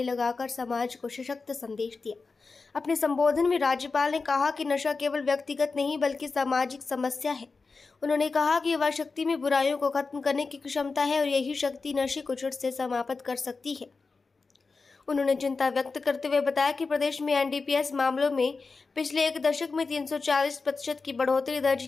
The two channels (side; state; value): right; quieter; 4.3 dB